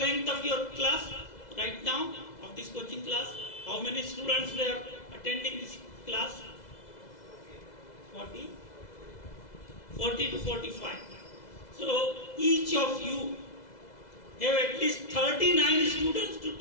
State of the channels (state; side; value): late; right; 2.0 ms